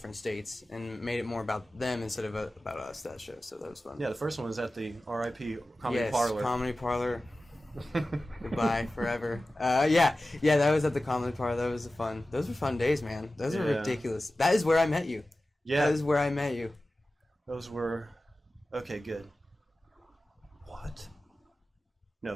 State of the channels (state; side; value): normal; both; correlation 0.95